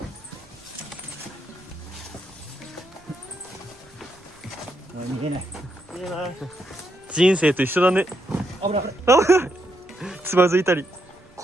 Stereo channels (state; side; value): noise; right; rumble, 28 dB below the sound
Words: 逃げない。いいな。人生と一緒だね。危ない。つまずいたり